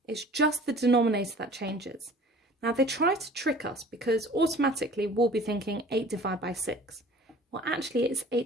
It's just the denominator that changes. Now, they try to trick us because automatically we'll be thinking 8 divided by 6. Well, actually, it's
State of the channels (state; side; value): normal; both; correlation 0.47